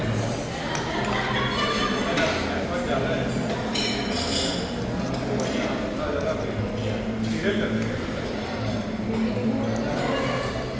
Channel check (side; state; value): both; identical; correlation 1.00